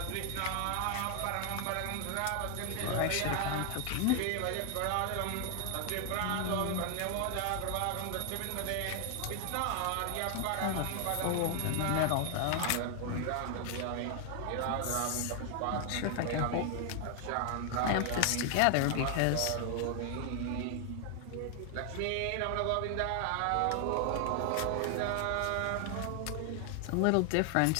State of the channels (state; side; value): different; both; correlation 0.00